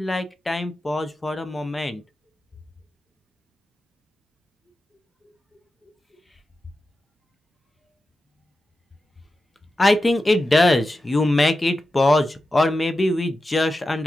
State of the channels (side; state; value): both; normal; correlation 0.92